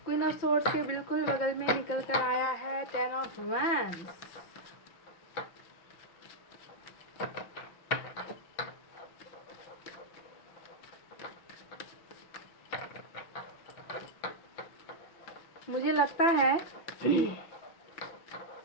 Queen of swords के बिल्कुल बगल में निकल कर आया है टेन ऑफ वैंड्स। मुझे लगता है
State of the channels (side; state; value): right; late; 5.8 ms